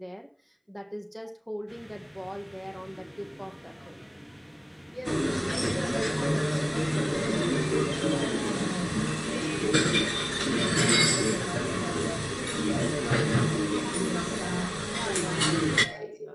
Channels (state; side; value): identical; both; correlation 1.00